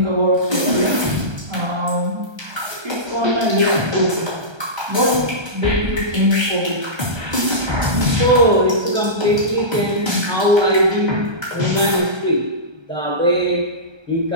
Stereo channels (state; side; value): late; left; 1.3 ms